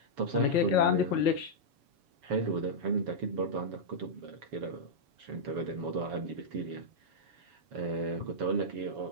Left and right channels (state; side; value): late; left; 7.1 ms